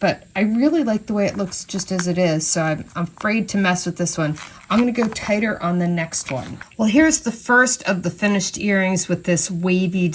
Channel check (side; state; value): both; identical; correlation 1.00